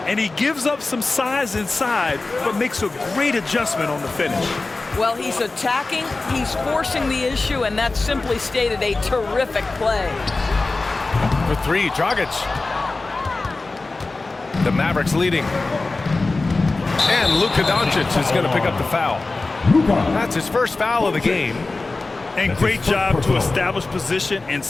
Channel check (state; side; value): quieter; right; 3.4 dB